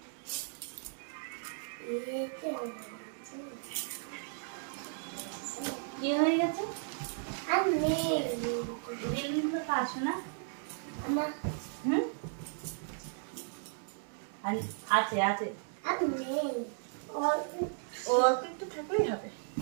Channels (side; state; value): left; silent; digital silence